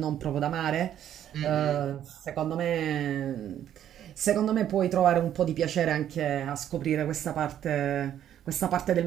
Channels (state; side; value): quieter; left; 10.7 dB